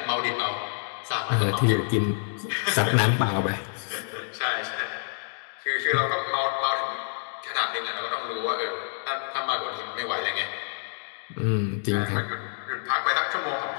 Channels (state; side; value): silent; right; digital silence